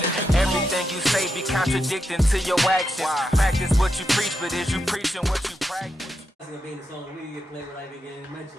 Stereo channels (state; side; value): normal; both; correlation 0.85